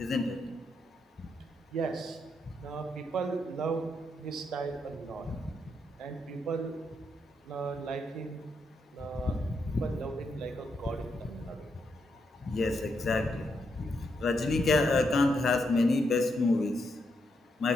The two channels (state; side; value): normal; both; correlation 0.80